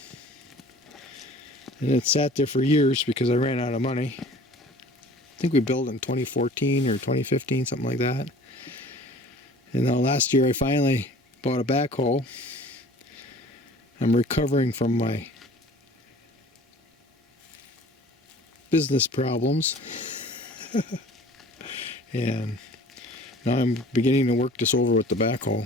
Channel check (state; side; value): normal; both; correlation 0.47